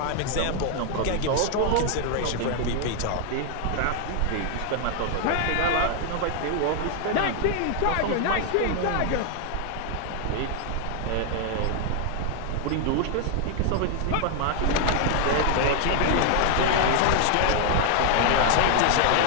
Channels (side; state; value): both; different; correlation 0.00